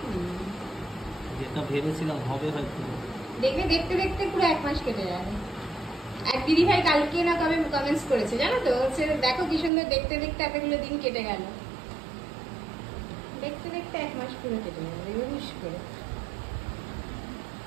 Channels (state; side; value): drops out; left; at 9.7 s